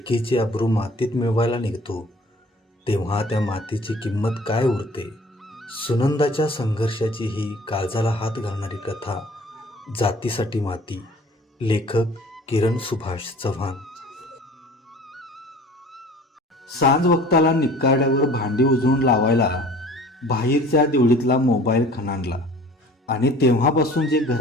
अब्रू मातीत मिळवायला निघतो, तेव्हा त्या मातीची किंमत काय उरते. सुनंदाच्या संघर्षाची ही काळजाला हात घालणारी कथा जातीसाठी माती. लेखक किरण सुभाष चव्हाण. सांज वक्ताला निकाड्यावर भांडी उजळून लावायला बाहेरच्या देवळीतला मोबाईल खणाणला आणि तेव्हापासून जे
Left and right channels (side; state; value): both; normal; correlation 0.48